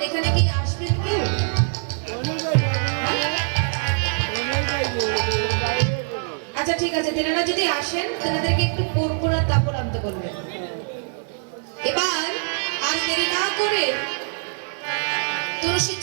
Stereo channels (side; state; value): left; silent; digital silence